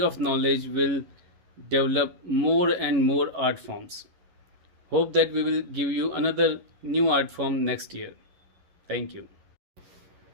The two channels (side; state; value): left; late; 11 ms